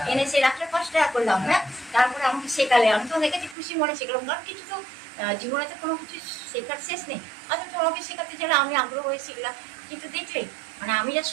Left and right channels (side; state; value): left; drops out; at 3.6 s